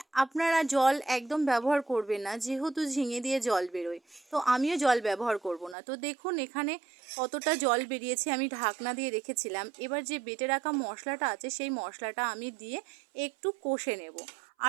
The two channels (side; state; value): left; drops out; at 5.8 s